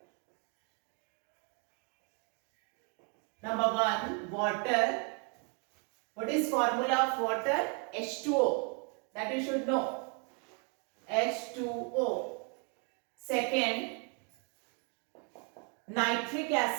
Number 1, water. What is formula of water? H2O. That you should know. H2O. Second, nitric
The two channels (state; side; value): quieter; left; 37.8 dB